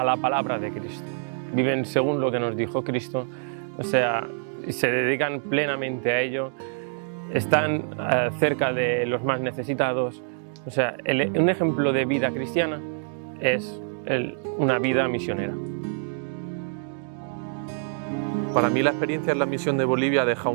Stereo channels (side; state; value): left; silent; digital silence